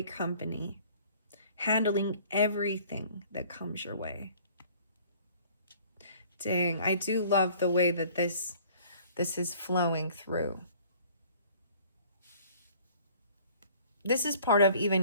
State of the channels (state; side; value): inverted; both; correlation -0.53